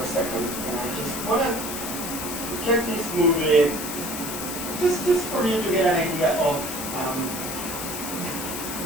a second. I want to check this movie just for you to get an idea of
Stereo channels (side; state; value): left; noise; hiss, 6 dB below the sound